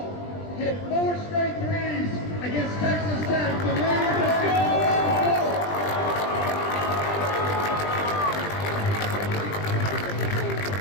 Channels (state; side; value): late; right; 20 ms